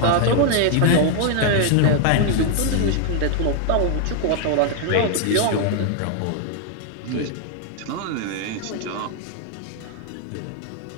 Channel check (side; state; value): both; different; correlation 0.00